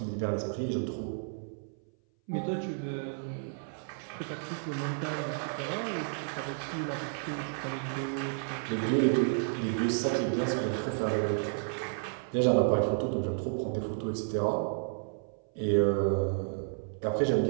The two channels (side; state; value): left; silent; 57 dB below the other